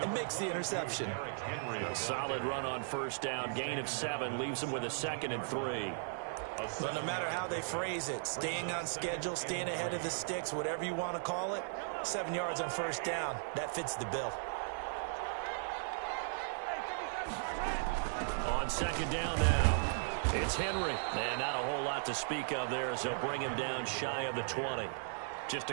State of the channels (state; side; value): silent; left; 53 dB below the other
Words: and makes the interception. A solid run on first down. Gain of 7 leaves him with a 2nd and 3. But no matter how they phrase it, staying on schedule, staying ahead of the sticks, whatever you want to call it, 7 yards on first down, that fits the bill. On second down now, it's Henry. And not a whole lot to speak of there as they'll bring him down shy of the 20. Just